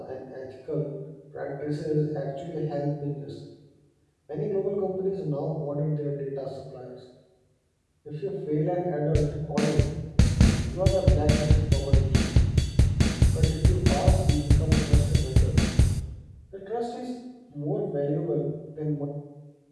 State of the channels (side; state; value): both; identical; correlation 1.00